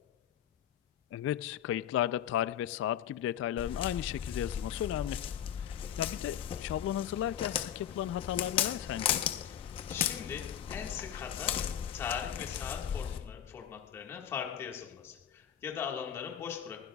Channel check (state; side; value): quieter; right; 10.2 dB